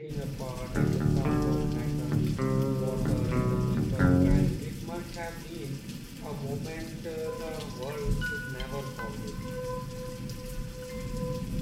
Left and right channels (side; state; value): both; identical; correlation 1.00